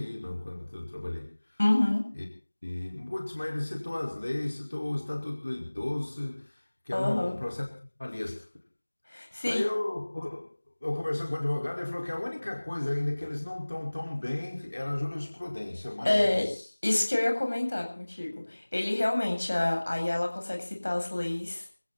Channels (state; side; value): inverted; both; correlation -1.00